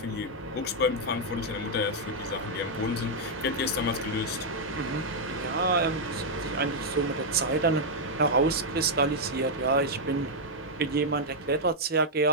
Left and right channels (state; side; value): normal; both; correlation -0.04